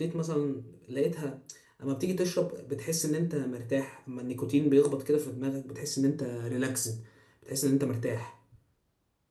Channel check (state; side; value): identical; both; correlation 1.00